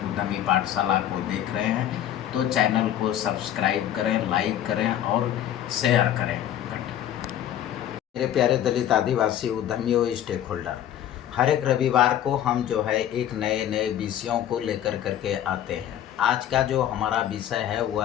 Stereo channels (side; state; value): right; quieter; 11.1 dB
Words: उद्यमी पाठशाला को देख रहे हैं, तो चैनल को सब्सक्राइब करें, लाइक करें और शेयर करें। मेरे प्यारे दलित आदिवासी उद्यमियों स्टेक होल्डर, हर एक रविवार को हम जो है एक नए नए विषयों को लेकर करके आते हैं। आज का जो हमारा विषय है वह